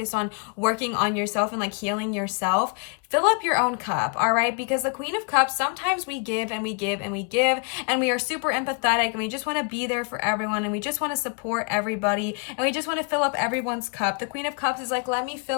on working on yourself and like healing yourself. fill up your own cup, all right? Because the Queen of Cups, sometimes we give and we give and we give, and we are super empathetic, and we just want to be there for everyone, and we just want to support everybody, and we just want to fill up everyone's cup. The Queen of Cups is like, let me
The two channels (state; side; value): quieter; right; 36.4 dB